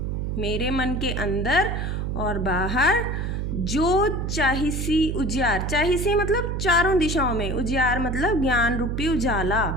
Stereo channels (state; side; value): noise; right; hum, 2 dB below the sound